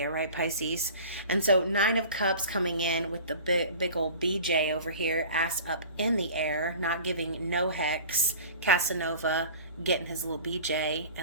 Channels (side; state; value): both; inverted; correlation -0.41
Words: right, Pisces? And so Nine of Cups coming in with the big old BJ over here, ass up in the air, not giving no hex, Casanova getting his little BJ